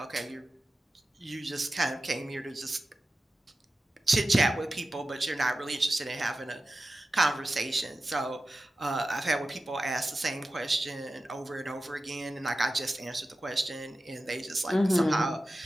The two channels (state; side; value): normal; both; correlation 0.93